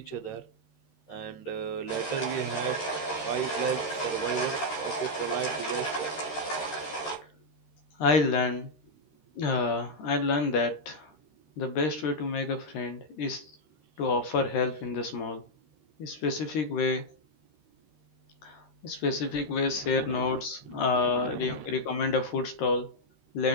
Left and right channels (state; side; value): late; right; 13 ms